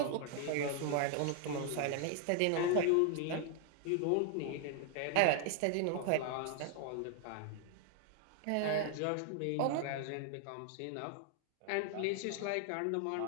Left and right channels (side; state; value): both; different; correlation 0.00